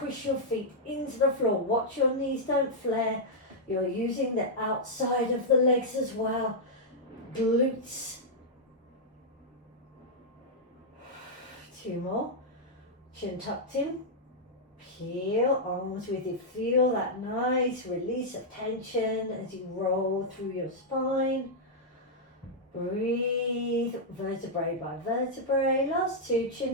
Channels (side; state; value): both; normal; correlation -0.06